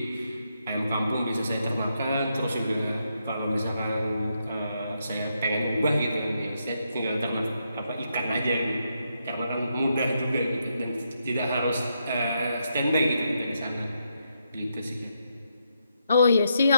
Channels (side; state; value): both; inverted; correlation -0.80